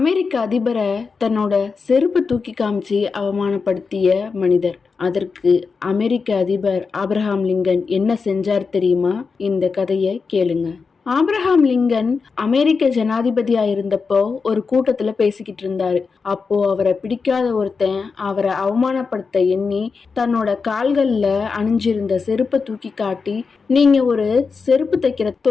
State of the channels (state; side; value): quieter; right; 4.9 dB